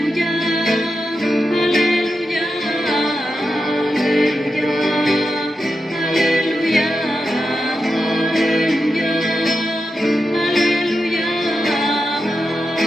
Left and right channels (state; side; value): normal; both; correlation 0.89